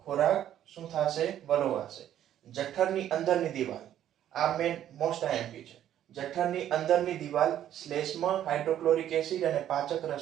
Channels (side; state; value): left; quieter; 11.2 dB